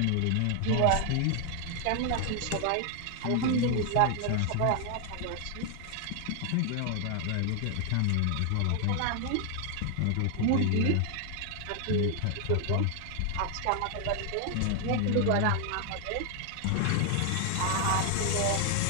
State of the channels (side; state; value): both; different; correlation 0.00